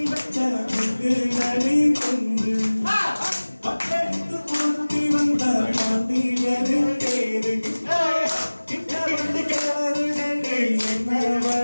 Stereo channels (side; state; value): both; inverted; correlation -1.00